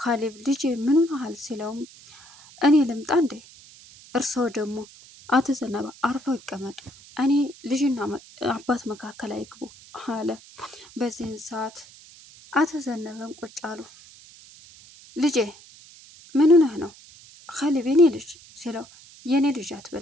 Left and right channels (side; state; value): right; noise; hiss, 22 dB below the sound